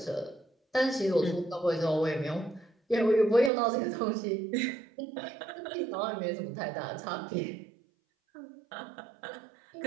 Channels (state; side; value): drops out; left; at 3.5 s